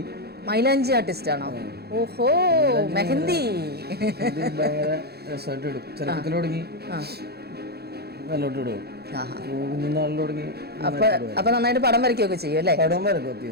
മൈലാഞ്ചി ആർട്ടിസ്റ്റ് ആണോ? ഓഹോ, മെഹന്തി ഭയങ്കര രസമായിട്ട് ഇടും. ചെറുപ്പത്തിൽ തുടങ്ങി നല്ലോട്ട് ഇടും. അപ്പൊ നന്നായിട്ട് പടം വരയ്ക്കുകയൊക്കെ ചെയ്യും അല്ലേ?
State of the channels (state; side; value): late; left; 0.47 ms